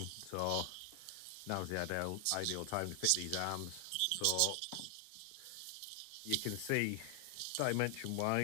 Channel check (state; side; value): different; both; correlation 0.00